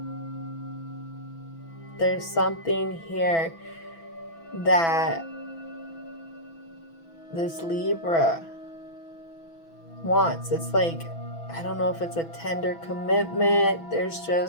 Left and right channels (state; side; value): late; right; 6.0 ms